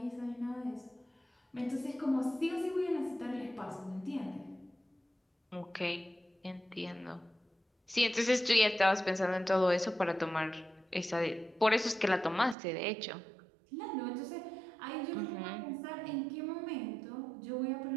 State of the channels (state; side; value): drops out; left; at 12.6 s